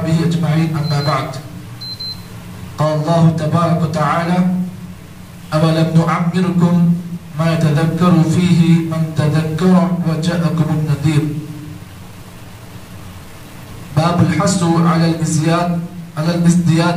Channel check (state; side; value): identical; both; correlation 1.00